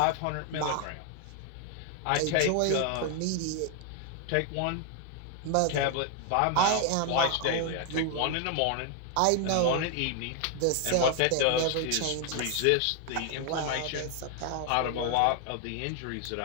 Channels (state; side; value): different; both; correlation 0.00